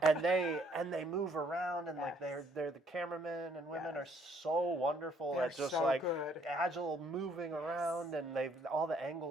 and they move around, and like Yes. they're the cameramen and women Yes. are so wonderful They're at just so like good. agile moving around, and all the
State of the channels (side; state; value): both; normal; correlation 0.65